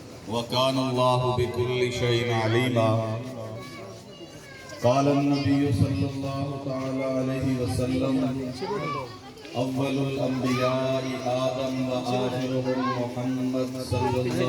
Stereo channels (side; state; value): both; identical; correlation 1.00